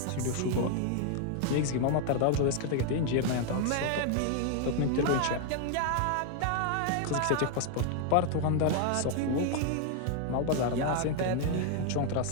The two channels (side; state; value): both; different; correlation 0.00